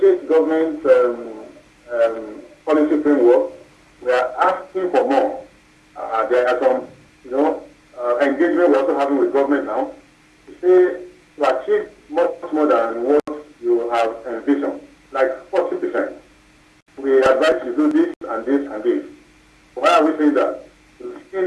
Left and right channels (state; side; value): identical; both; correlation 1.00